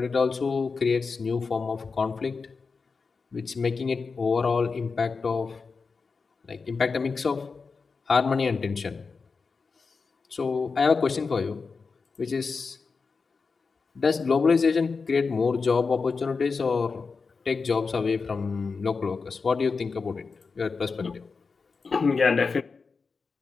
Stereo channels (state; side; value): quieter; right; 4.7 dB